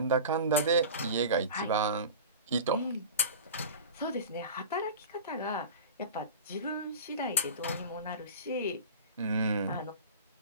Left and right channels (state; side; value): inverted; both; correlation -0.34